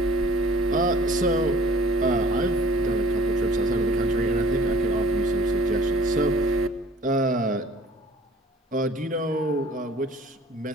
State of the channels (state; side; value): normal; both; correlation 0.53